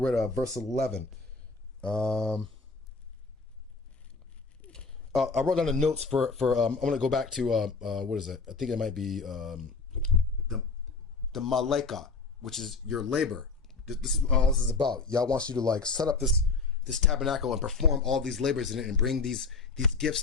at verse 11. I wrote down the notes for I'm going to go back to, what is it? I think it might be the Maleka, which is your labor. This is all this is about. Yah wants you to like set up this tabernacle and perform all these labors in it and bring these gifts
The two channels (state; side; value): quieter; right; 4.2 dB